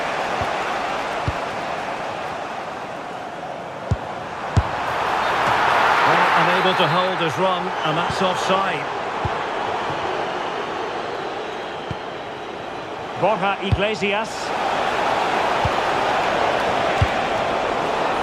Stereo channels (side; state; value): both; identical; correlation 1.00